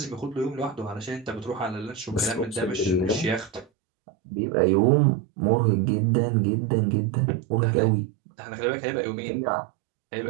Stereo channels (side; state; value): left; drops out; at 3.7 s